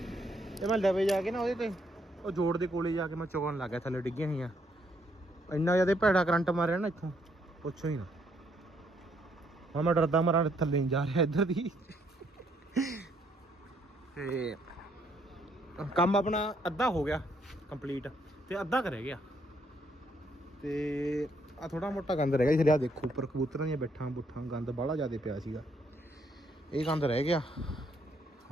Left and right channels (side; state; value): both; normal; correlation 0.71